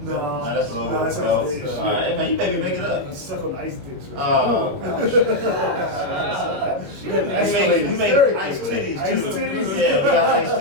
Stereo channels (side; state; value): left; late; 21 ms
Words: No. Nah, that's a little no, bit. that's All like right, man, you baby make it up. Suck on ice dicks. Or Oh, Shit, we man. make ice titties Ice too. titties? Yeah, we got ice